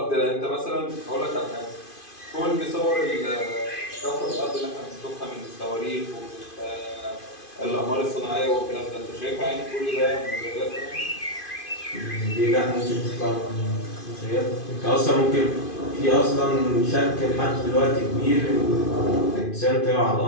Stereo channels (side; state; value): right; late; 2.5 ms